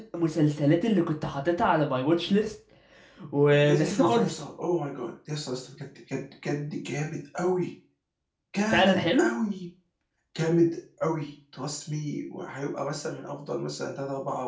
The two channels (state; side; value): identical; both; correlation 1.00